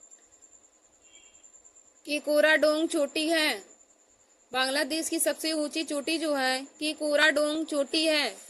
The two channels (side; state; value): both; identical; correlation 1.00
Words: केकोराडोंग चोटी है। बांग्लादेश की सबसे ऊंची चोटी जो है केकोराडोंग चोटी है।